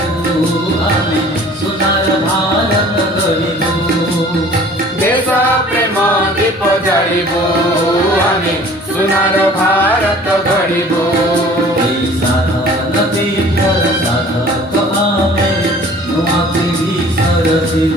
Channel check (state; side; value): normal; both; correlation 0.49